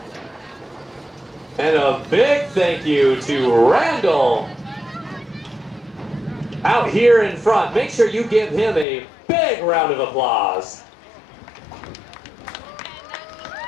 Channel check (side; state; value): right; drops out; at 8.8 s